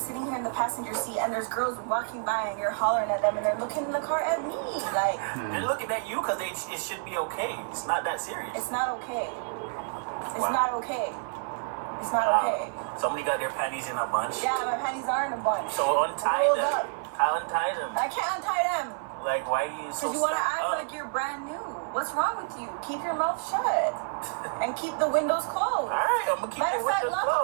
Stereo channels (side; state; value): left; silent; digital silence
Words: here in the passenger seat and there's girls walking by and you're hollering at them and they're looking in the car at me. Like, They're looking at you because it should be okay. It's not that serious. it's not okay. It's Wow. not okay. It's not okay. Somebody got their panties in a bunch. Yeah, my panties are in a bunch. So untie Rolled them. up. Untie them. I can't untie them. Like, why are you so Because you want to stuck act up? like you're brand new. What's wrong with you? Keep your mouth shut. And keep the windows closed. Alright, I'm gonna keep Matter the of fact, windows lock up